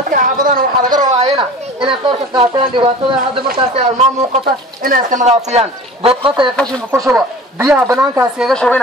xaafadana waxa laga rabaayna inay qoorka qaataan dhibaatada hadda markaas ay almaam muuqata inay iska nadaafiyaan dadqata ay qashin ku shubo biyaha banaankaas iga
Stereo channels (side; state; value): both; normal; correlation 0.40